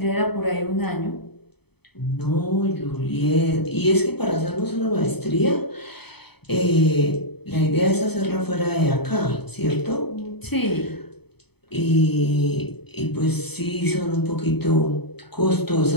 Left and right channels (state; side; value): late; right; 0.98 ms